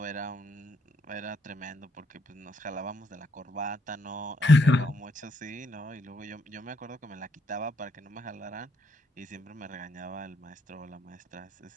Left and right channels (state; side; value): normal; both; correlation 0.74